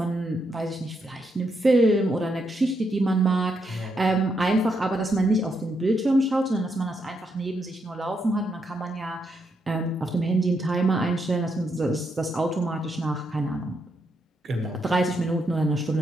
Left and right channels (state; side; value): normal; both; correlation 0.79